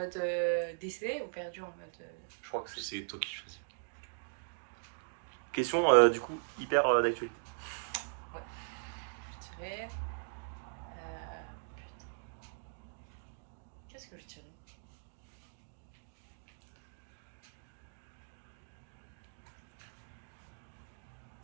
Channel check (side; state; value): left; silent; digital silence